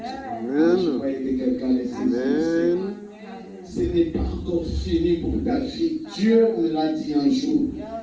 croyais que quelqu'un les saisisse. Ce n'est pas encore fini pour ta vie. Dieu me l'a dit un jour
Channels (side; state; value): both; identical; correlation 1.00